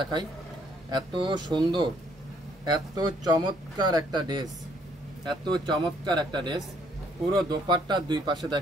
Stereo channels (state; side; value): normal; both; correlation 0.66